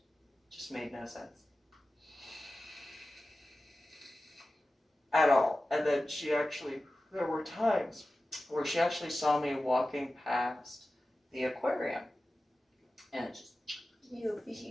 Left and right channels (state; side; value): normal; both; correlation 0.95